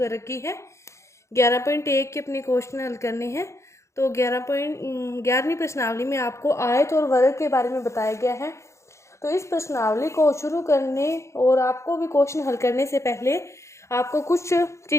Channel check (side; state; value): right; late; 0.14 ms